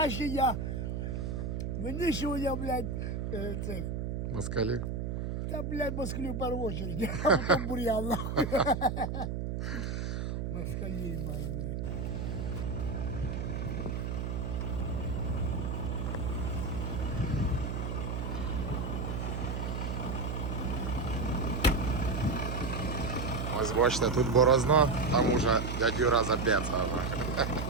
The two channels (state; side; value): noise; right; hum, 2 dB below the sound